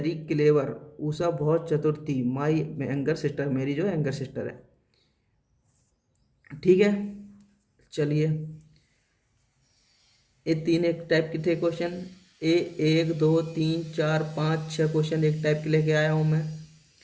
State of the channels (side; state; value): both; identical; correlation 1.00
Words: क्लेवर, उषा बहुत चतुर थी, माई यंगर सिस्टर, मेरी जो यंगर सिस्टर है, ठीक है। चलिए ये 3 एक टाइप के थे क्वेश्चन, 1 2 3 4 5 6 क्वेश्चन एक टाइप के लेके आया हूँ मैं,